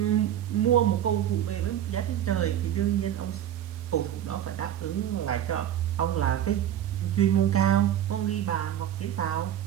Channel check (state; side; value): quieter; left; 11.1 dB